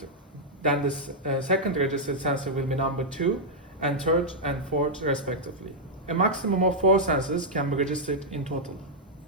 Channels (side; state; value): both; normal; correlation -0.05